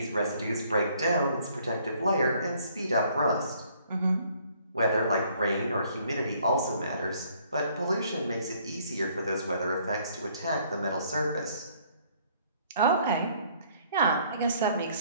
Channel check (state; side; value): inverted; both; correlation -0.62